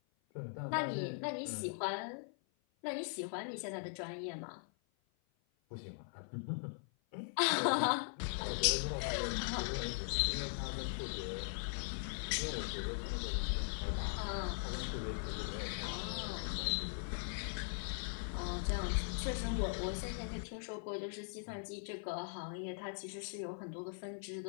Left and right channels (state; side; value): silent; right; 51 dB below the other